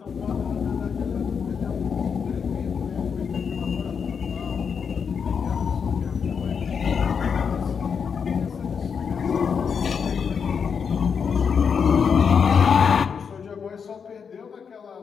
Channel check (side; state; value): right; quieter; 6.5 dB